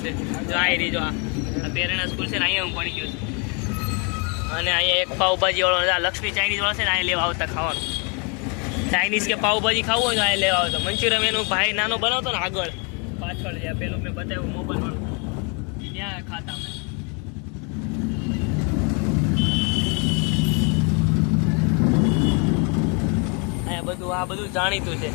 જો અહીં રહી. જો આ પેરણા સ્કૂલ છે ને, અહીંયા હું ભણી ગયો છું. અને અહીંયા એક પાવભાજી વાળો, લક્ષ્મી ચાઇનીઝ વાળો છે ને, અહીંયા લેવા આવતા ખાવાનું. ચાઇનીઝ કે પાવભાજી ખાવું હોય તો અહીંયા લેવા આવતા. મંચુરિયમ એનું ભાઈ નાનો બનાવતો ને આગળ પાછળ, જ્યાં પેલું મેં બતાવ્યું મોબાઈલ વાળું, ત્યાં ખાતા અમે. આ બધું જાણીતું છે,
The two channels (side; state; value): right; quieter; 35.0 dB